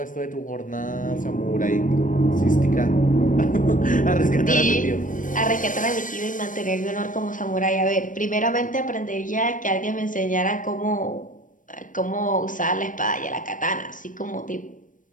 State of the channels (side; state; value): right; late; 0.38 ms